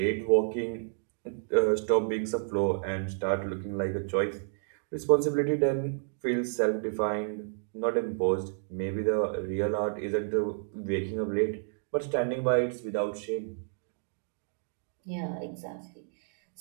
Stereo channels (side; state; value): left; silent; digital silence